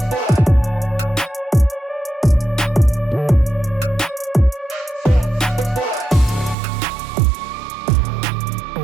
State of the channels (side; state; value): left; drops out; at 6.6 s